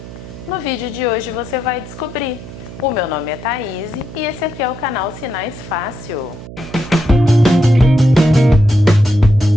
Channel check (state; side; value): noise; right; hum, 14 dB below the sound